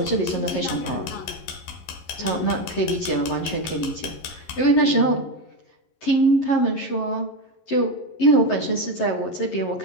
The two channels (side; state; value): right; late; 11 ms